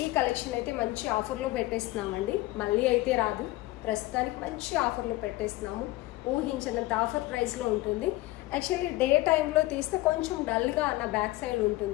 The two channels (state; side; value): quieter; right; 18.7 dB